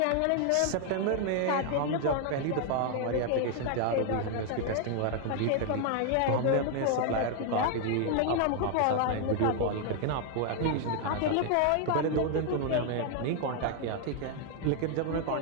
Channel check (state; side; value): different; both; correlation 0.00